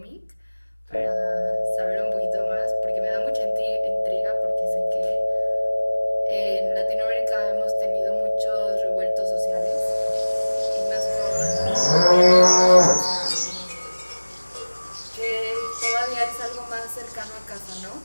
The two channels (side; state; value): both; inverted; correlation -1.00